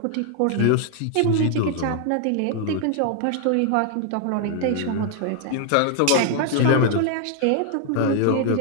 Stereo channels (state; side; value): different; both; correlation 0.00